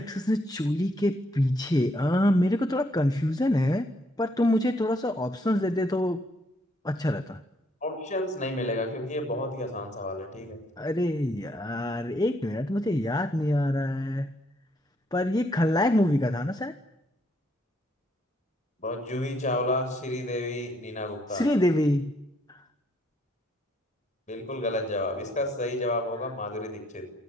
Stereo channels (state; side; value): normal; both; correlation 0.71